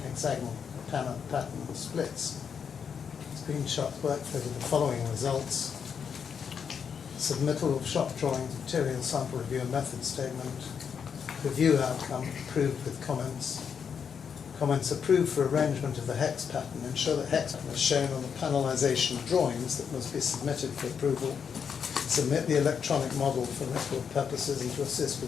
hexagonal pattern and splits. Screenshots workflow with the following results. Submittal of shop drawings, material sample review and method statement. Review outcome approved with comments. Comments approved for arrangement of the hex pattern. Ensure that hex pattern is shown on the panelization drawings that must be submitted for approval. Submit the electronic model for record purposes and to assist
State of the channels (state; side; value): quieter; right; 7.0 dB